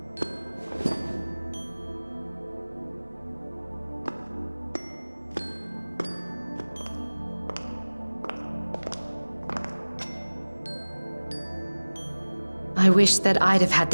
I wish that I'd have had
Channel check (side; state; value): both; inverted; correlation -1.00